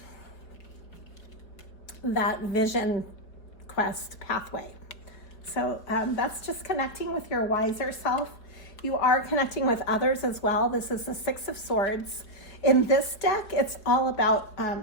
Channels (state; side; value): late; right; 4.6 ms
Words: that vision quest pathway. So that's just connecting with your wiser self. You are connecting with others as well. This is the 6 of Swords. In this deck, it's all about